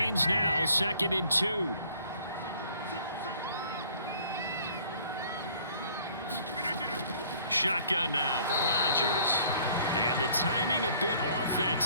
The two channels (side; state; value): both; inverted; correlation -0.57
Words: now, 2nd and 2. Shotgun now for Rodgers. And the timing a bit off that